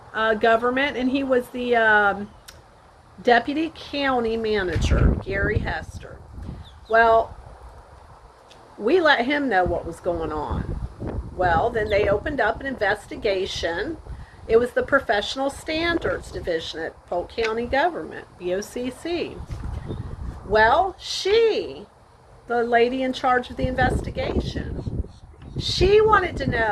government, and he was the deputy county manager, Gary Hester. Well, we let him know what was going on. Well, then they opened up an investigation. It was the Professional Standards Division at Polk County Government, BOCC. Well, the lady in charge of the investigation, she wanted to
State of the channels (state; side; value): identical; both; correlation 1.00